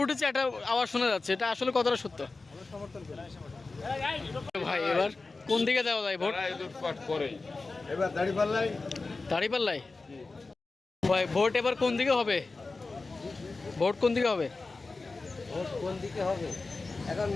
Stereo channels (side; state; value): right; quieter; 3.7 dB